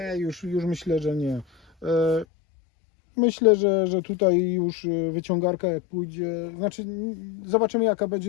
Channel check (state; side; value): drops out; right; at 2.2 s